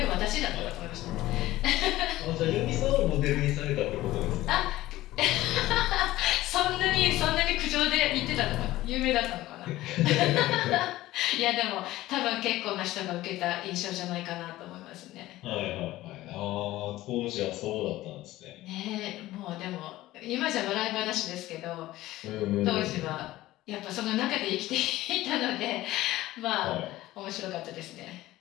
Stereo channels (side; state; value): right; quieter; 16.5 dB